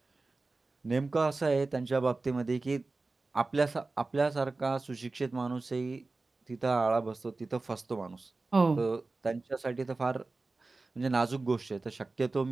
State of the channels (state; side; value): quieter; left; 3.5 dB